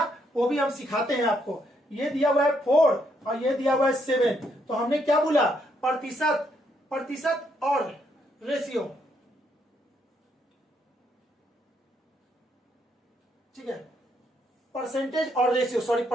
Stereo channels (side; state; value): both; normal; correlation 0.74